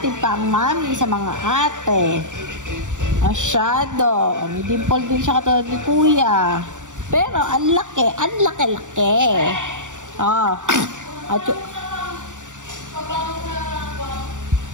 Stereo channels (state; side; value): late; left; 0.86 ms